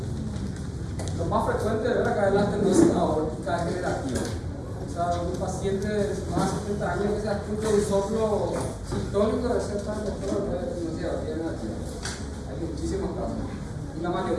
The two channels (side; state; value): both; identical; correlation 1.00